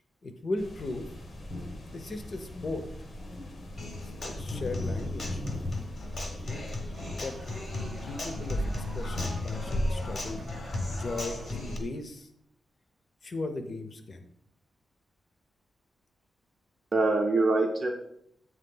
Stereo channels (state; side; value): normal; both; correlation 0.86